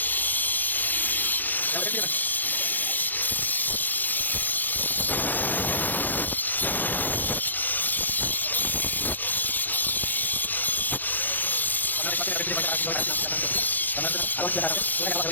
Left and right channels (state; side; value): late; right; 0.086 ms